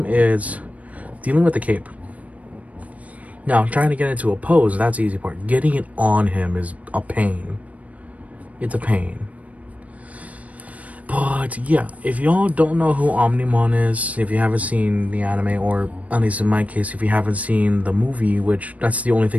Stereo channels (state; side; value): late; left; 0.068 ms